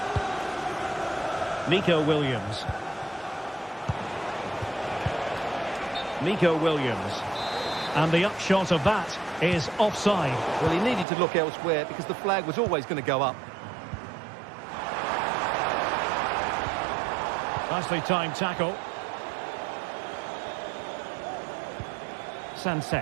Nico Williams. Nico Williams. And the upshot of that is offside. Well, he needed to look elsewhere because the flag was always going to go up. Nicely timed tackle.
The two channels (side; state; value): left; drops out; at 11.1 s